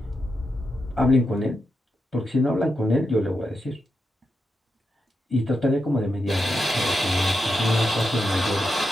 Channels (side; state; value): both; normal; correlation 0.86